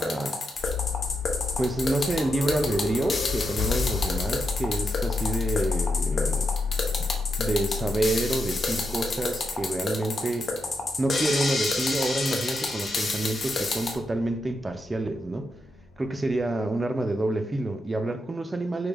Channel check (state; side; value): normal; both; correlation 0.83